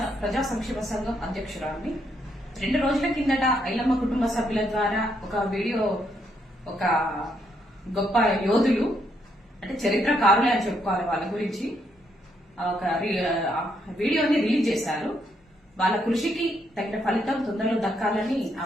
ప్రజా సంక్షేమ సంఘం అధ్యక్షురాలిని. 2 రోజుల కిందట ఐలమ్మ కుటుంబ సభ్యుల ద్వారా ఒక వీడియో, ఒక గొప్ప యోధులు అంటే చరిత్రకారులే అని చెప్పుకోవాలి వాళ్ళ గురించి, ఒక వీడియోని రిలీజ్ చేశారు. వాళ్ళ కృషికి తగిన ఫలితం తొందరలో దక్కాలని ఆ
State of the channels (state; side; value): normal; both; correlation 0.75